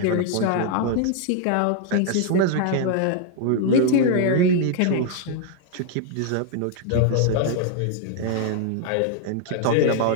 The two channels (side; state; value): both; different; correlation 0.00